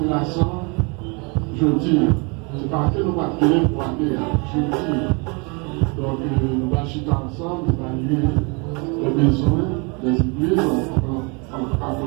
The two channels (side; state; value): left; quieter; 31.7 dB